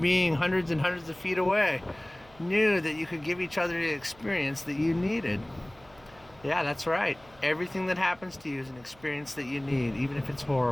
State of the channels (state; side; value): noise; right; hum, 26 dB below the sound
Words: hundreds and hundreds of feet away, knew that you could give each other the experience that you needed. Yeah, that's right. Everything that happens to you is an experience that you need, even if it's